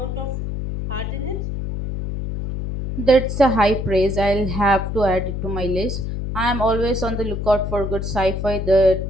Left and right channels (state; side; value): noise; left; hum, 4 dB below the sound